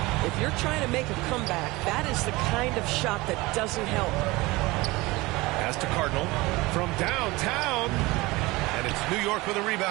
If you're trying to make a comeback, that is the kind of shot that doesn't help. Pass to Cardinal from downtown. And it's New York with a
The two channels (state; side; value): quieter; left; 21.7 dB